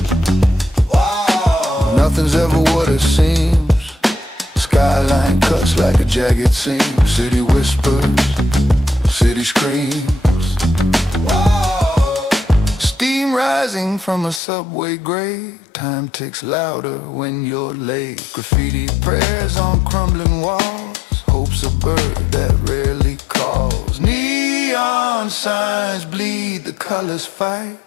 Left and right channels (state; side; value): drops out; right; at 14.4 s